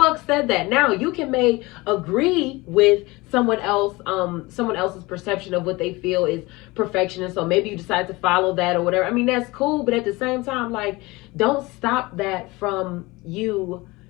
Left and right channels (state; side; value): quieter; right; 22.4 dB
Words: said that? Now you can agree with someone else's perception of what they feel is perfection. And so maybe you decide to follow that or whatever. I mean, that's cool. But at the same time, like, don't stop that from you